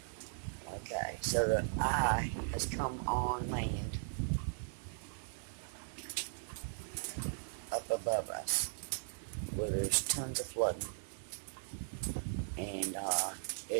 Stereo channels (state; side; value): silent; left; digital silence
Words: Okay, so the eye has come on land up above us where there's tons of flooding, and